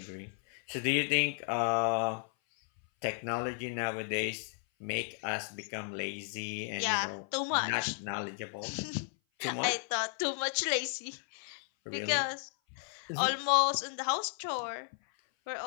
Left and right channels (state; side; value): silent; right; 55 dB below the other